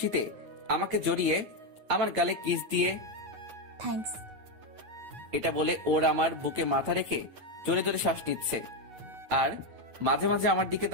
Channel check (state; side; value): late; left; 9.0 ms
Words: আমাকে জড়িয়ে আমার গালে কিস দিয়ে, থ্যাঙ্কস। এটা বলে ওর আমার বুকে মাথা রেখে জোরে জোরে শ্বাস নিচ্ছে আর মাঝে মাঝে আমার দিকে